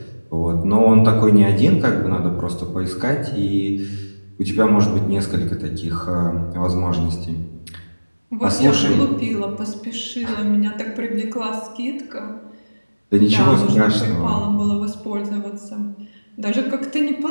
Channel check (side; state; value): both; inverted; correlation -1.00